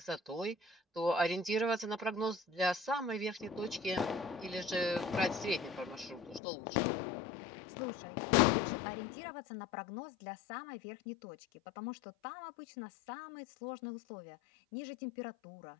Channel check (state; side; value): drops out; right; at 6.4 s